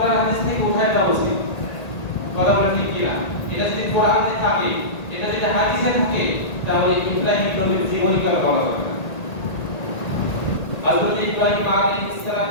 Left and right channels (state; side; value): late; right; 1.8 ms